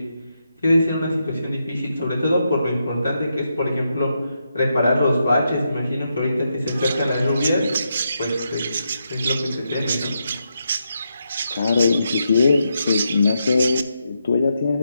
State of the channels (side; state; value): both; inverted; correlation -0.83